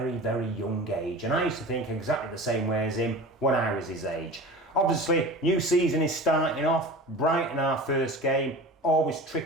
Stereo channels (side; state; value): both; normal; correlation 0.35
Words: very young age. And I used to think exactly the same way as him when I was his age. Obviously, new season is starting off. Brighton, our first game, always